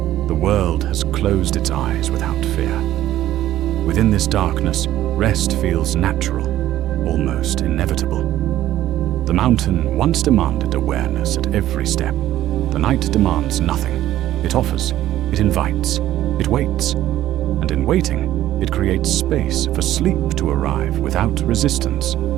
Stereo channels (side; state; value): left; quieter; 13.5 dB